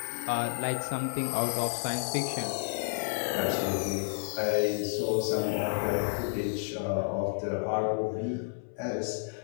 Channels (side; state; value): right; silent; 57 dB below the other